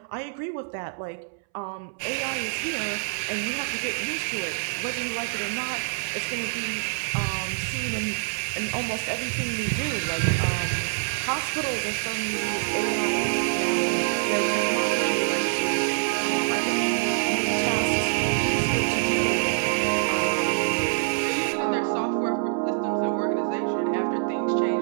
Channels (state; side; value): silent; left; 61 dB below the other